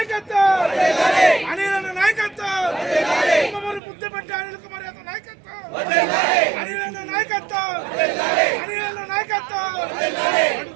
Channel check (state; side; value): drops out; left; at 3.8 s